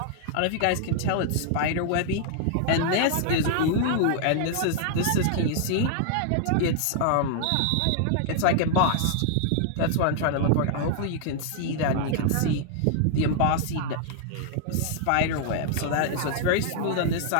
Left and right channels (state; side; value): different; both; correlation -0.01